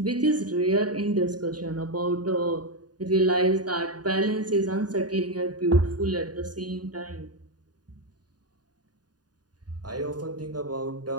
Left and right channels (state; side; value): late; left; 0.69 ms